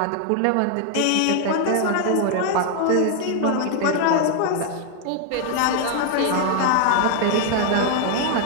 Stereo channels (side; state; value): both; different; correlation 0.00